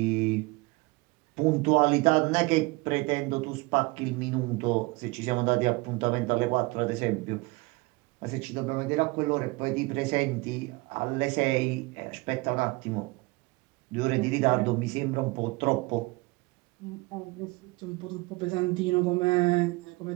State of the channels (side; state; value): left; quieter; 24.6 dB